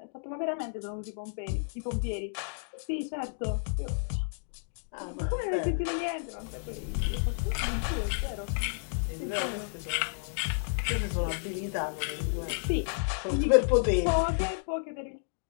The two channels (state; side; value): silent; right; digital silence